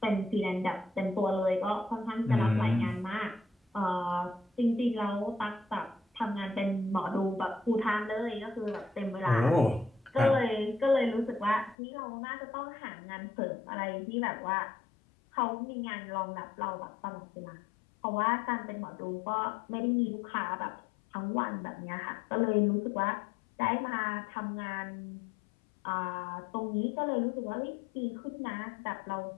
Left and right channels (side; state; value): right; drops out; at 11.8 s